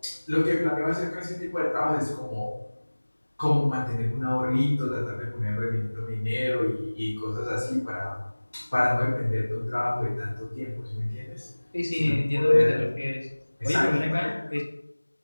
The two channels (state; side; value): inverted; both; correlation -1.00